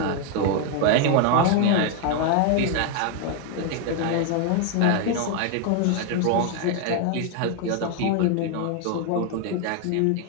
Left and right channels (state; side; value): different; both; correlation 0.00